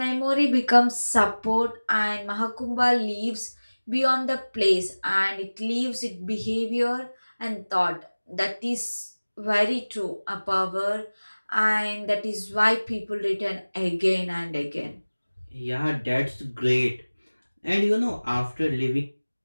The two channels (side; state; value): both; inverted; correlation -1.00